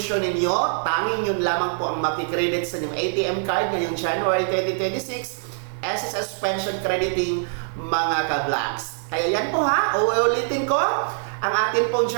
ninyo, tanging yun lamang po ang makikredit sa inyong ATM card ngayong January 2026, SSS pension crediting mga ka-vlogs. Kaya yan po uulitin ko ang ating pong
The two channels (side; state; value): left; silent; digital silence